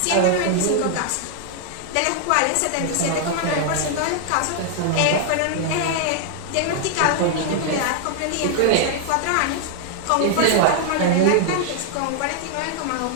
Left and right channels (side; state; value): both; different; correlation 0.00